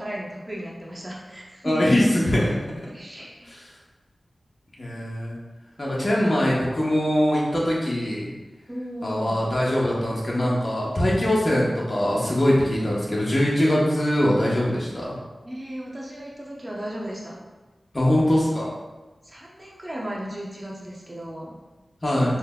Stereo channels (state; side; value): normal; both; correlation 0.96